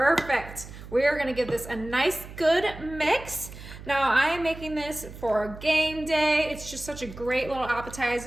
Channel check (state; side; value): noise; right; hum, 14 dB below the sound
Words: We are gonna give this a nice, good mix. Now, I am making this for game day. It's just such a great little